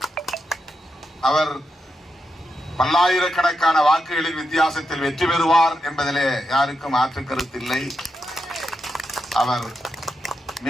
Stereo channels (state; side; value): normal; both; correlation 0.85